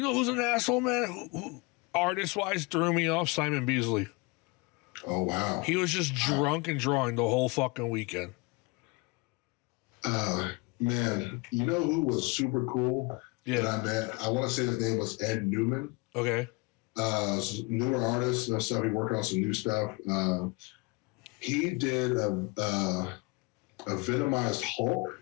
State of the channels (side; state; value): right; quieter; 27.5 dB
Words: asshole, man? Who artist wise threw me off? Simon Beasley. Oh wow. He was just drunk and drawing the whole fucking weekend. Man, you know who was super cool that I met? I want to say his name was Ed Newman. Okay. Newer artist and stuff. He working on some new stuff. He did a Venomized Hulk